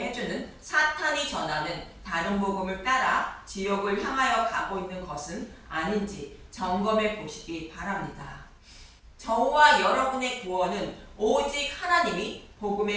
해주는 사탄이 전하는 다른 복음을 따라 지옥을 향하여 가고 있는 것은 아닌지 점검해 보시기 바랍니다. 저와 여러분의 구원은 오직 하나님이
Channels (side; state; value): both; identical; correlation 1.00